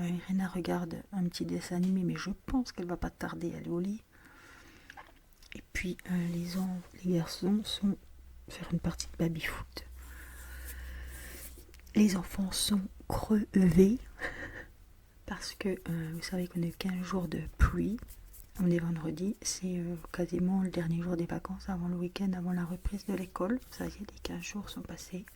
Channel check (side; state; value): both; identical; correlation 1.00